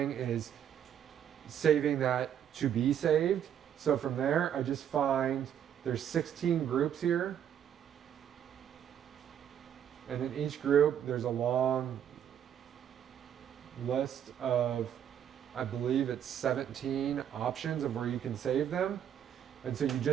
is saving that to be saved. So from there, I just find there's 16 groups here. And in each group, there's a long list of, I believe it's 17 options of where you can save them. And so you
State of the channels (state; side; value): quieter; left; 9.4 dB